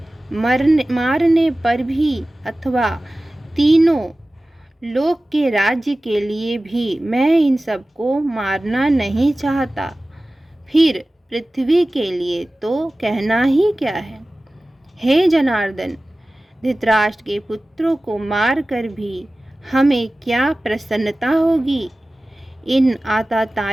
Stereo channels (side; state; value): both; normal; correlation 0.97